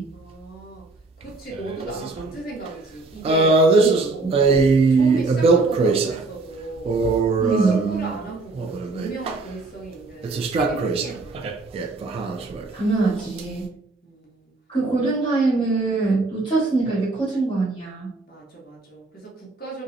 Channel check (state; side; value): quieter; left; 3.4 dB